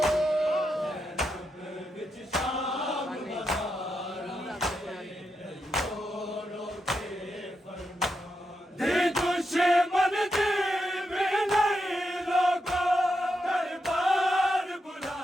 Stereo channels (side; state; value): both; normal; correlation 0.85